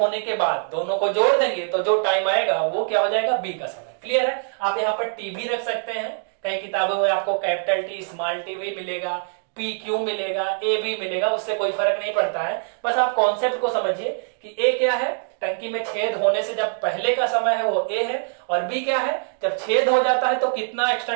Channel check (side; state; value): left; silent; digital silence